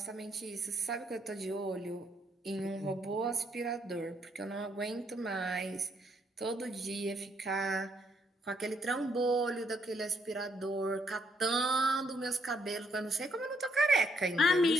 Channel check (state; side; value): normal; both; correlation 0.73